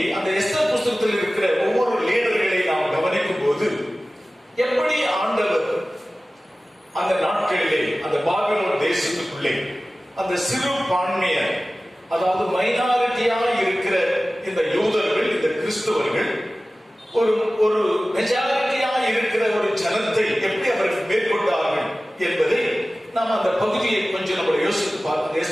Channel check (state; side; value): normal; both; correlation 0.97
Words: அந்த எஸ்தர் புஸ்தகத்தில் இருக்கிற ஒவ்வொரு லீடர்களை நாம் கவனிக்கும் போது எப்படி ஆண்டவர் அந்த நாட்களிலே அந்த பாபிலோன் தேசத்துக்குள்ளே அந்த சிறு பான்மையர், அதாவது மைனாரிட்டியாக இருக்கிற இந்த யூதர்கள், இந்த கிறிஸ்தவர்கள் ஒரு மெஜாரிட்டியாக இருக்கிற ஒரு ஜனத்தை எப்படி அவர்கள் மேற்கொண்டார்கள் என்பதை நாம் அந்த பகுதியை கொஞ்சம் நம்ம யோசித்து பார்க்க,